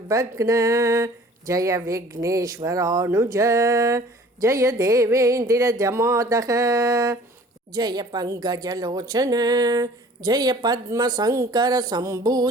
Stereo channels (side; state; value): both; normal; correlation 0.50